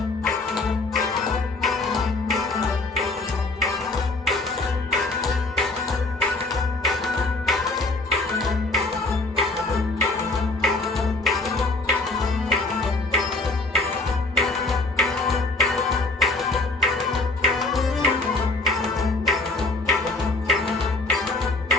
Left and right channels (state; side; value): quieter; right; 3.1 dB